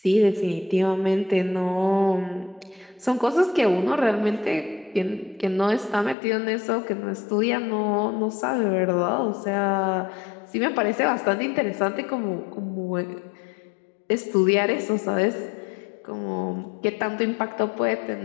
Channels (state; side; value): drops out; right; at 6.2 s